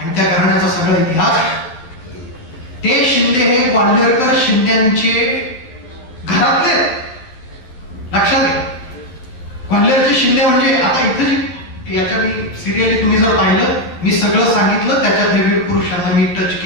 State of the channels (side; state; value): right; late; 12 ms